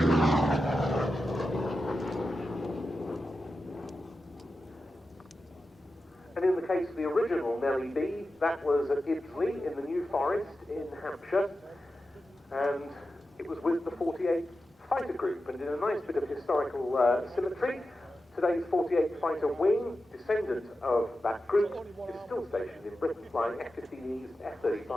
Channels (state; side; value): normal; both; correlation 0.91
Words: And in the case of the original Nellie B, that was at Ibsley in the New Forest in Hampshire, and it was with the 48th Fighter Group. And in a nice bit of historical symmetry, today's 48th Fighter Wing, descendant of that group, is still stationed in Britain, flying F-15Es,